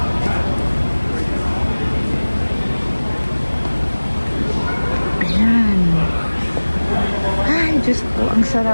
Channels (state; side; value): inverted; both; correlation -1.00